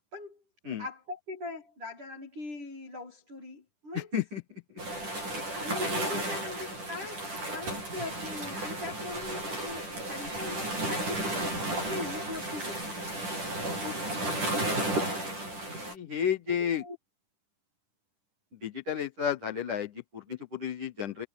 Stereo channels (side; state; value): left; late; 10 ms